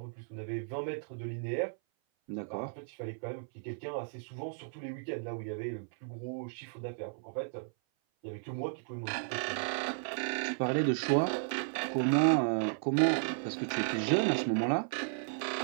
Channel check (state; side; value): silent; left; 55 dB below the other